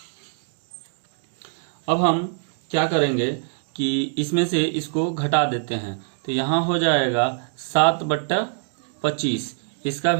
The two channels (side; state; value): left; silent; 63 dB below the other